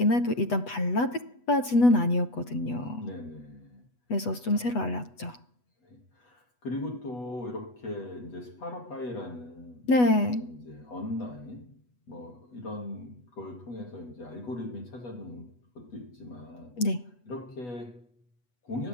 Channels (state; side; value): late; right; 8.1 ms